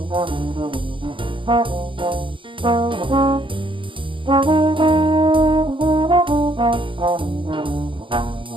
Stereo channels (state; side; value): late; left; 0.24 ms